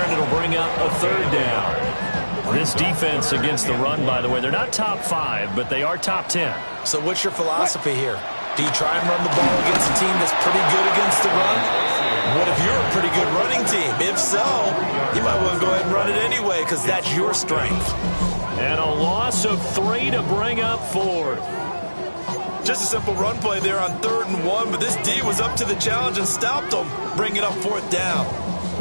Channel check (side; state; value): both; inverted; correlation -1.00